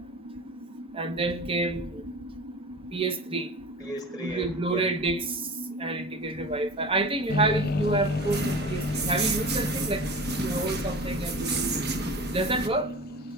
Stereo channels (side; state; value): both; normal; correlation 0.35